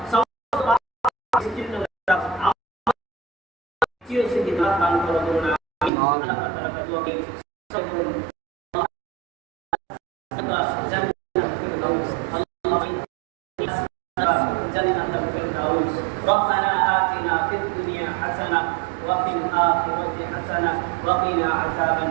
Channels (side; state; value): left; drops out; at 5.9 s